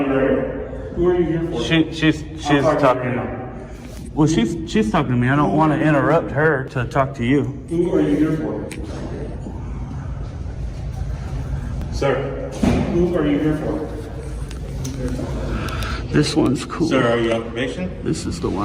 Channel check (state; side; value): identical; both; correlation 1.00